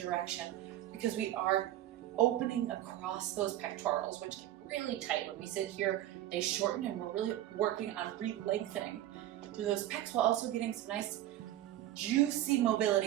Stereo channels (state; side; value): quieter; left; 13.6 dB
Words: because we are opening across those pectorals, which get really tight. When we sit here, they shorten, and we're really working on re-lengthening through those pecs while also getting some nice juicy